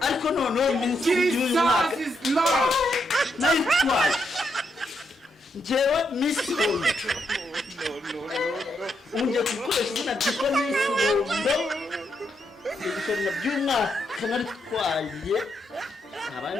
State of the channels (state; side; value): normal; both; correlation 0.79